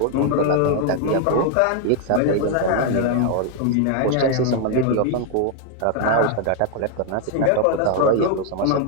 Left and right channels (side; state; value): both; different; correlation 0.00